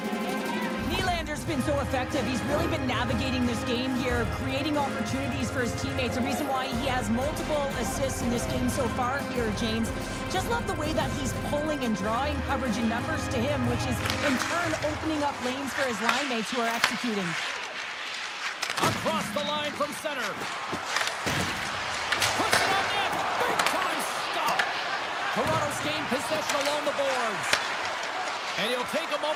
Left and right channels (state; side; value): identical; both; correlation 1.00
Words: Nylander's been so effective. He's really been navigating this game here, creating opportunities for his teammates. The reason why he has multiple assists in this game so far here, James. Just love the way that he's pulling and drawing coverage and numbers to him, which is in turn opening up lanes for his line mates who are executing. Across the line from center. Puts it on net. Big time stop. Toronto's gained possession along the boards. And he'll take a